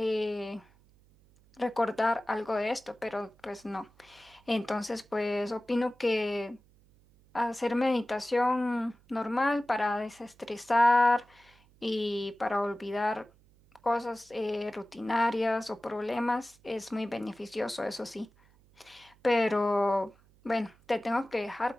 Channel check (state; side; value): noise; right; hum, 30 dB below the sound